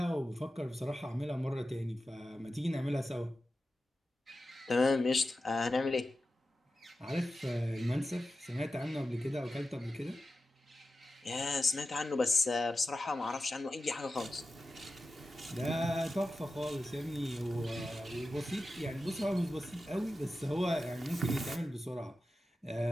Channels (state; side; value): normal; both; correlation 0.92